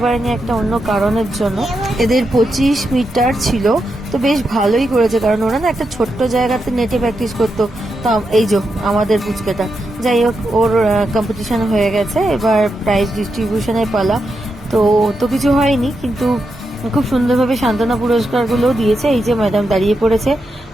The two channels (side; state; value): both; normal; correlation 0.85